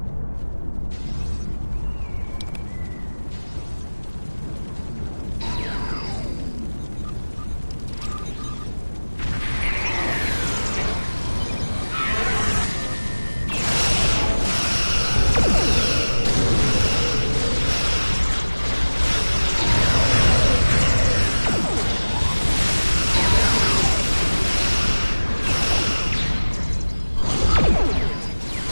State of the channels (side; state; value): both; inverted; correlation -1.00